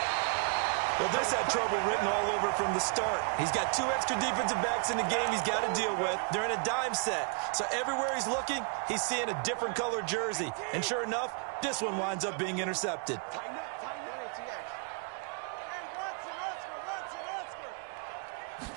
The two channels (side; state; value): left; quieter; 39.1 dB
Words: Well, this had trouble written all over from the start. He's got 2 extra defensive backs in the game he's got to deal with. They're in a dime set. So everywhere he's looking, he's seeing a different color jersey. And sure enough, this one winds up being intercepted.